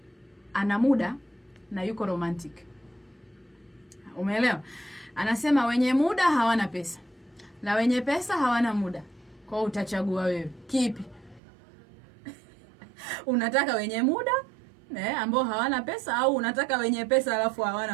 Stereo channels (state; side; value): drops out; left; at 11.4 s